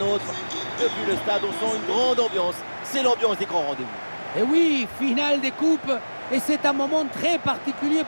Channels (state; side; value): inverted; both; correlation -1.00